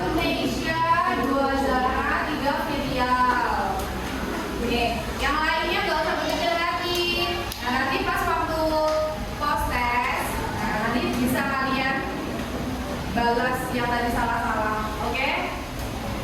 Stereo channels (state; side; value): identical; both; correlation 1.00